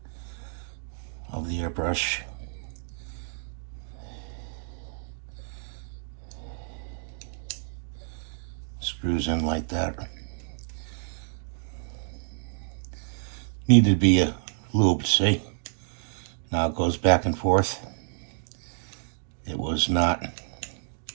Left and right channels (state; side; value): silent; left; digital silence